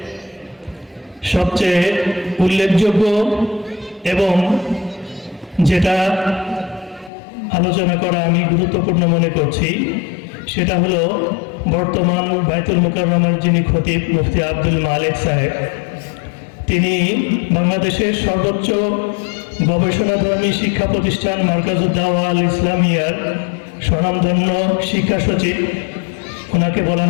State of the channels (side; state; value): right; drops out; at 7.1 s